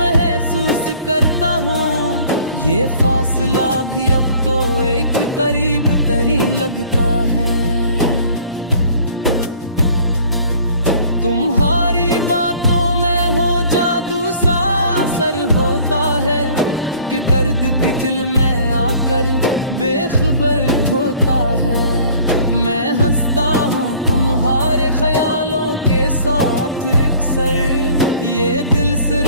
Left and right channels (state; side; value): inverted; both; correlation -0.52